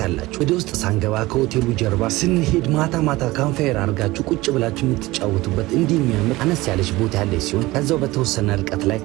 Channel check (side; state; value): left; quieter; 19.5 dB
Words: ወደ ውስጥ ሳንገባ ከሆቴሉ ጀርባ ስንሄድ ማታ ካምፋየር አድርጋችሁ ቁጭ ብላችሁ የምትጫወቱበት እንዲህ የሚያምር አነስ ያለች ቦታ ያለች ሲሆን ከዛው በተወሰነ ርቀት ላይ